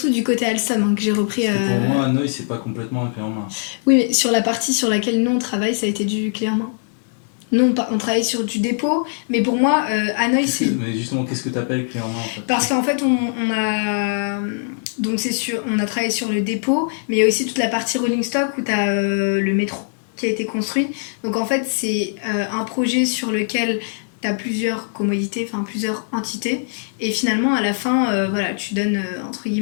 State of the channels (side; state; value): right; silent; 63 dB below the other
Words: du côté Alstom hein, que j'ai repris. Parce que pour moi Hanoï c'est pas complètement un clé en main. Oui, mais sur la partie sur laquelle nous on travaille ça a été du clé en main. Nous, on travaille sur du dépôt, mais pour moi, Hanoï, c'est... Mais justement, qu'est-ce que tu appelles clé en main en fait? Parce qu'en fait, on a... Donc, on a travaillé sur le dépôt, mais il y a aussi toute la partie rolling stock où tu as le métro qui a été construit. Donc, en fait, c'est un projet sur lequel tu as plusieurs commodités, enfin plusieurs entités. Et finalement, à la fin, voilà, tu donnes, entre